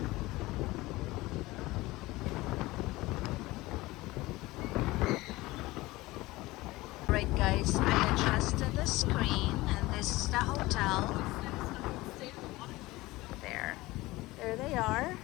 Right guys, I adjusted the screen and this is the hotel. There they are.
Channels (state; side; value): quieter; right; 19.7 dB